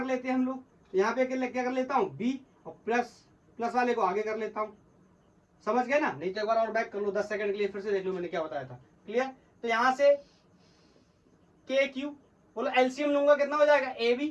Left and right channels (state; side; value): identical; both; correlation 1.00